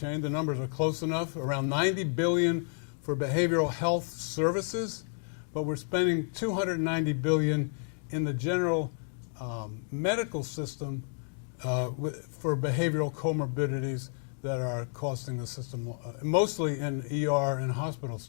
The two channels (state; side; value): silent; right; 57 dB below the other